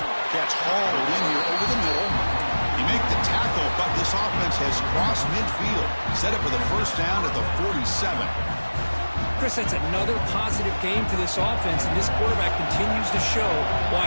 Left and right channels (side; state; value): both; inverted; correlation -1.00